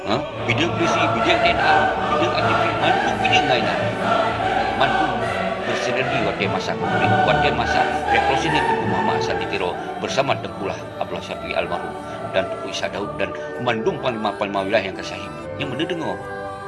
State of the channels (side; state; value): both; identical; correlation 1.00